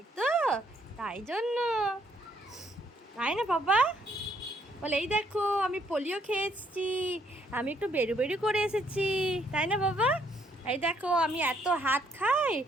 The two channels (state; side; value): normal; both; correlation 0.69